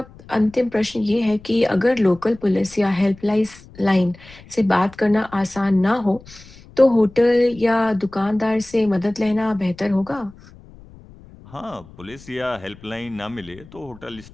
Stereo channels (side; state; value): left; noise; rumble, 22 dB below the sound